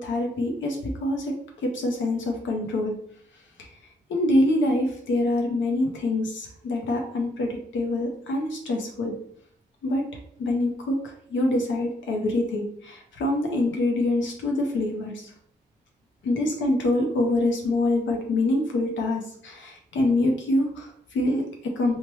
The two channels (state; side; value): normal; both; correlation 0.74